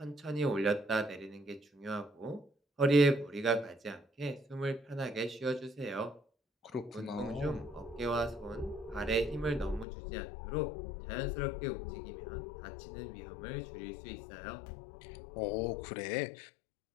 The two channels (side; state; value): right; drops out; at 9.9 s